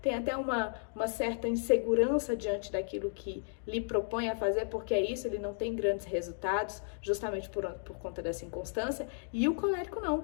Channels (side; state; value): right; silent; digital silence